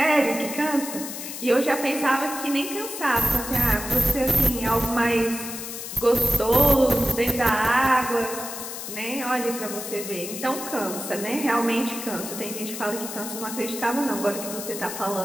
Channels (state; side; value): noise; left; hiss, 8 dB below the sound